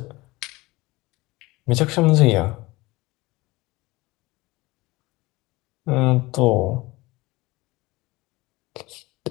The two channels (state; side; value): quieter; right; 21.2 dB